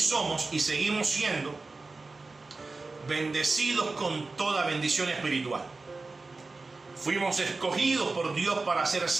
seguimos siendo bendecidos con toda bendición espiritual. Fuimos escogidos por Dios para ser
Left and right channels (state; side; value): quieter; left; 3.6 dB